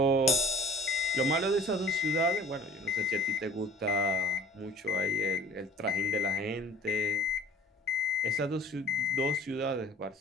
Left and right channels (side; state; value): both; normal; correlation 0.50